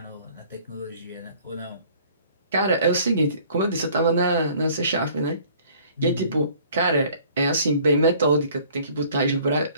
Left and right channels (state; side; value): inverted; both; correlation -0.54